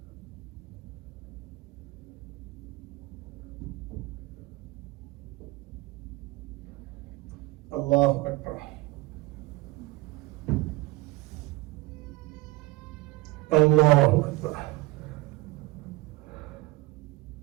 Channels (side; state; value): left; quieter; 21.4 dB